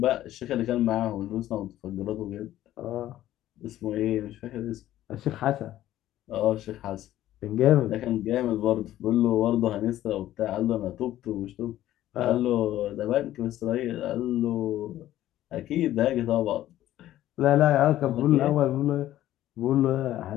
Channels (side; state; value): right; quieter; 13.6 dB